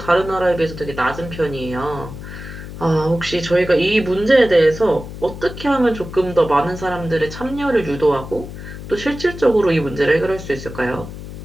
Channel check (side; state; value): left; noise; hum, 11 dB below the sound